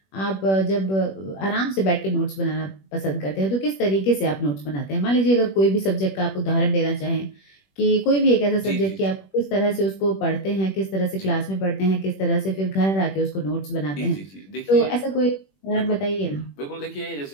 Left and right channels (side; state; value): right; late; 21 ms